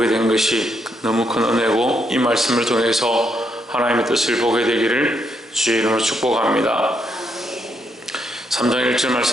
된 것이 너무 큰 은혜고, 이 말씀을 통해서 하나님의 뜻을 보게 되기를 주의 이름으로 축복합니다. 3장 1절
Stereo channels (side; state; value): both; normal; correlation 0.77